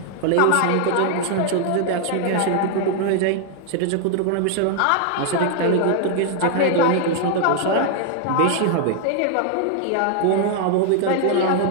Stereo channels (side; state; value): both; different; correlation 0.00